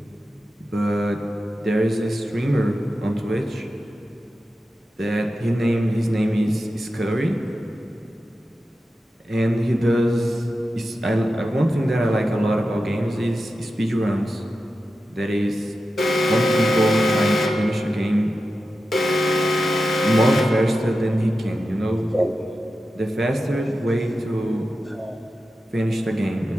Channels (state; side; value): normal; both; correlation 0.92